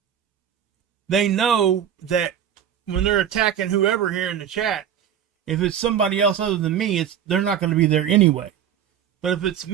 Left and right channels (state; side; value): quieter; left; 9.3 dB